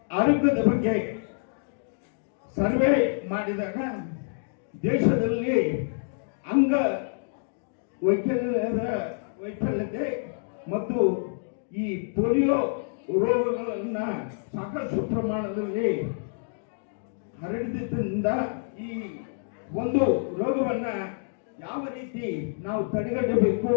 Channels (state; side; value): silent; right; digital silence